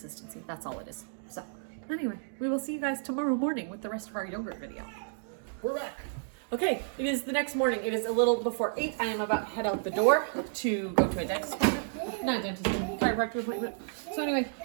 That's all it is. So anyway, we will see you guys tomorrow morning with the rest of our yogurt video. We're back. Okay, it is the next morning. It is a little before 8. I am about to head out the door to go to a dentist appointment. Not a dentist, chiropractor appointment. So anyway,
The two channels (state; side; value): silent; left; digital silence